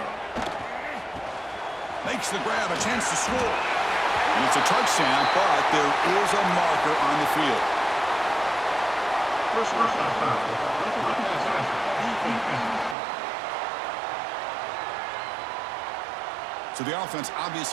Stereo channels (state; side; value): drops out; left; at 13.0 s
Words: Makes the grab, a chance to score. And it's a touchdown, but there is a marker on the field. So the offense